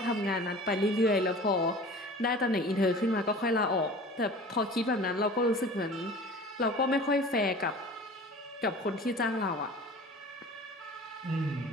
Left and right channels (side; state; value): both; normal; correlation 0.41